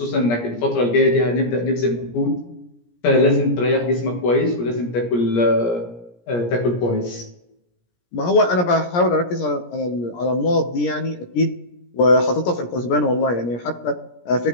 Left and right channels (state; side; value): late; right; 17 ms